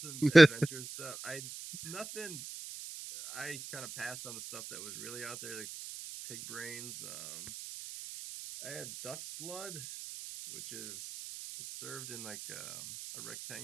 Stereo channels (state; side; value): noise; right; hiss, 11 dB below the sound